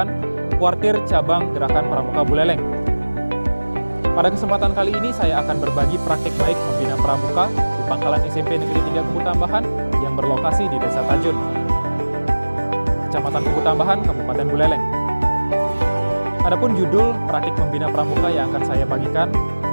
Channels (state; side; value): inverted; both; correlation -1.00